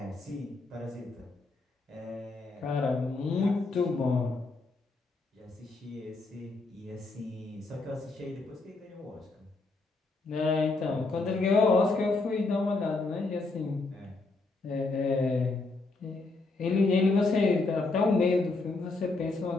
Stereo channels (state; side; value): quieter; right; 3.5 dB